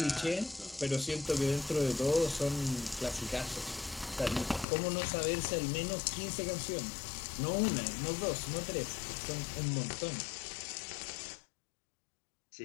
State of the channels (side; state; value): right; drops out; at 4.7 s